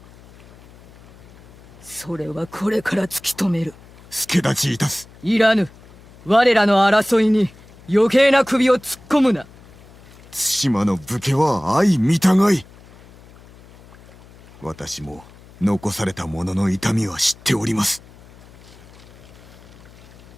それはこれから突き止める。助立ちいたす。いらぬ。我らの争いに余計な首を突っ込むな。対馬の武家は相見たがい。私も残された者の痛みは知っております。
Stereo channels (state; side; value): noise; left; hum, 23 dB below the sound